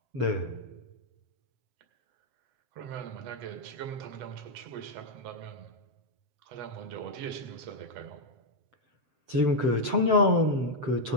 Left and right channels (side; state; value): left; late; 7.7 ms